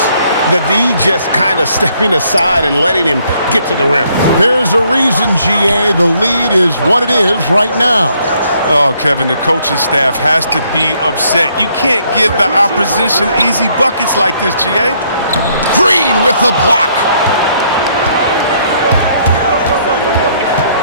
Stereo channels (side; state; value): both; inverted; correlation -0.68